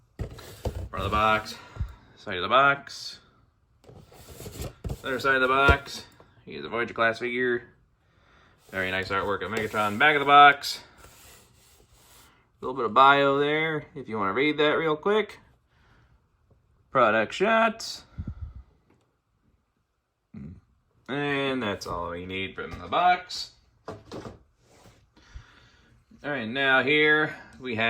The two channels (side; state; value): both; identical; correlation 1.00